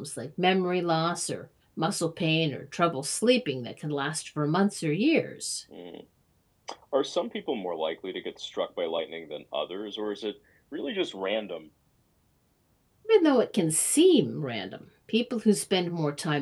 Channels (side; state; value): both; identical; correlation 1.00